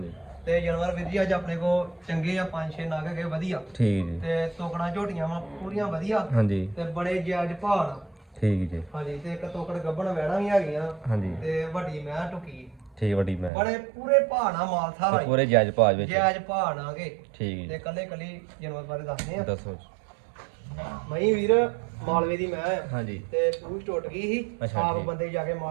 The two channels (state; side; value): drops out; left; at 13.5 s